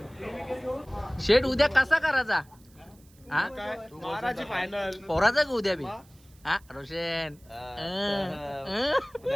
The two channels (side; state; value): right; noise; hiss, 29 dB below the sound